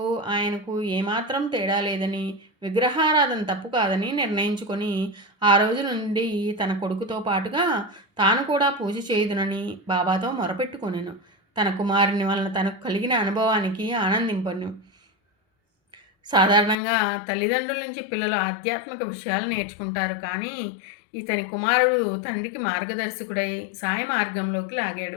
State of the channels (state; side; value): drops out; right; at 16.8 s